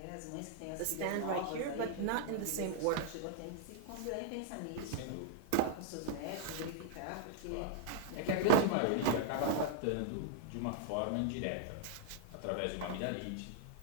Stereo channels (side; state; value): both; different; correlation 0.00